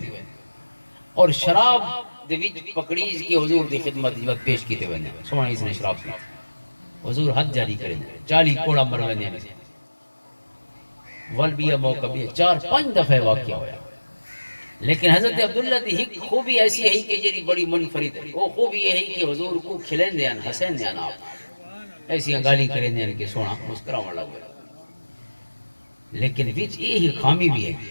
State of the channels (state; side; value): inverted; both; correlation -1.00